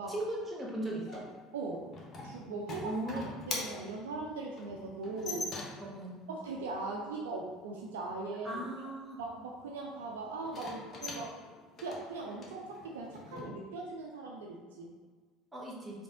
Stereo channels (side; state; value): both; normal; correlation 0.36